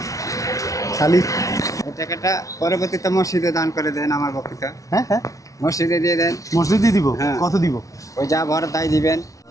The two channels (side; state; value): right; late; 0.16 ms